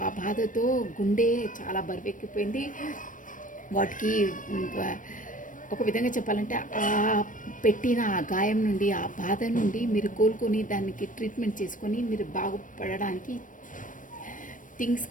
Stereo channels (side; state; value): right; late; 0.38 ms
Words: ఆ బాధతో గుండె చాలా బరువెక్కిపోయింది. వాటికి ఒక విధంగా చెప్పాలంటే ఆ పెట్టిన ఆ గాయం నుండి, ఆ బాధ నుండి మీరు కోలుకొని దానికి ట్రీట్మెంట్ చేసుకొని మీరు బాగుపడడానికి థింగ్స్